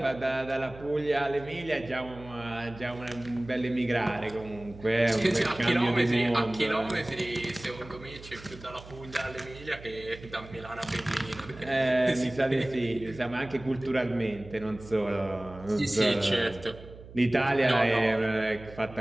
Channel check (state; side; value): noise; right; hum, 17 dB below the sound